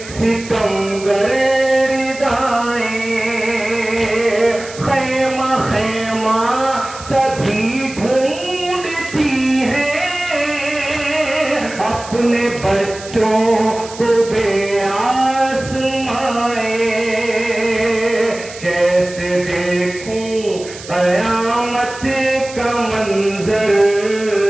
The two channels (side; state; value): right; noise; hiss, 15 dB below the sound